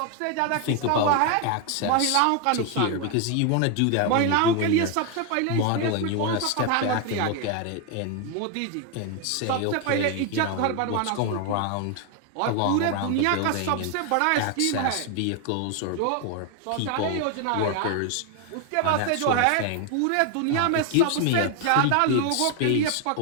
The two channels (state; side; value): different; both; correlation 0.01